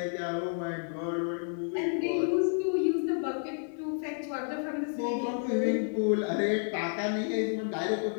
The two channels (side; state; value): right; silent; digital silence